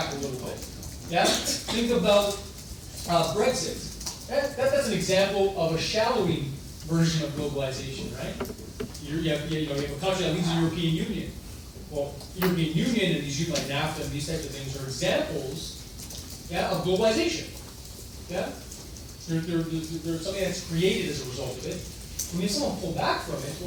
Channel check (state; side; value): identical; both; correlation 1.00